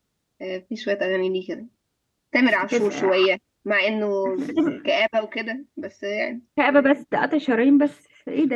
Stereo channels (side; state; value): both; identical; correlation 1.00